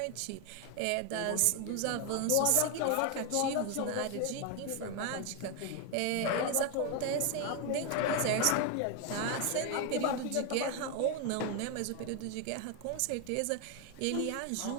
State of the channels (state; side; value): different; both; correlation 0.01